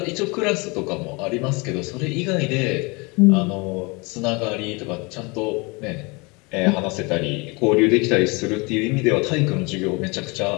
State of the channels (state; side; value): quieter; right; 27.8 dB